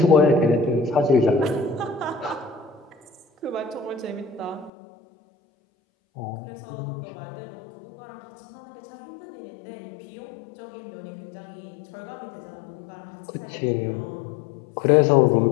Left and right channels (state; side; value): drops out; right; at 4.7 s